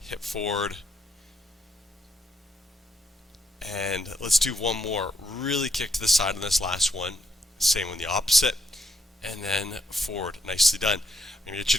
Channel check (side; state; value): both; normal; correlation 0.77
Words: hip forward, and let's do one more. Really kick to the side on this last one. Same on the opposite, and then forward. Nicely done. I'm going to get you